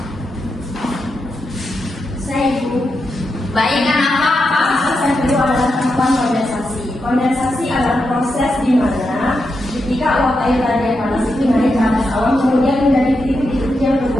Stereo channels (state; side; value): normal; both; correlation 0.85